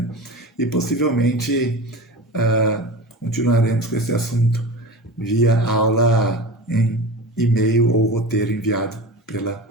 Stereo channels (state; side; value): normal; both; correlation 0.31